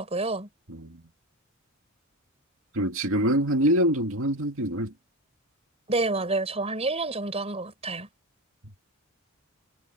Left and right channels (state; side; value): normal; both; correlation 0.17